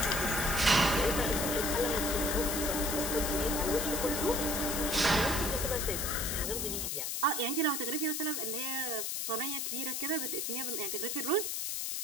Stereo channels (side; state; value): left; noise; hiss, 2 dB below the sound